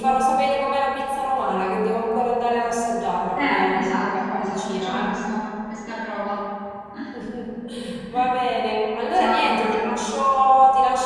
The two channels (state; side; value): identical; both; correlation 1.00